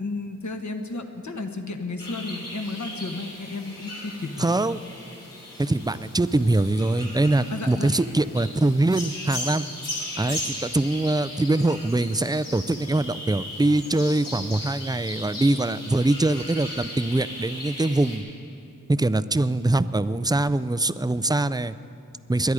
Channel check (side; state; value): both; normal; correlation 0.81